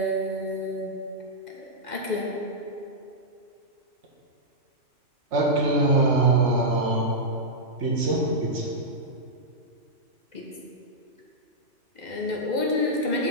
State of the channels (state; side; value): late; left; 2.0 ms